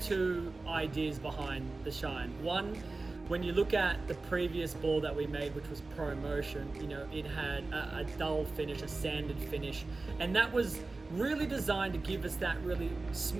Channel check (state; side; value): quieter; left; 3.5 dB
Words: ideas behind the shine. One, when you look at the previous ball that we made, which was Pro Motion, you know, it had a dull finish, a sanded finish, and that was really designed to give us that really